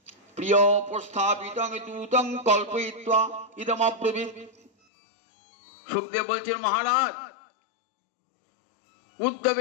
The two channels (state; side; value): drops out; right; at 4.7 s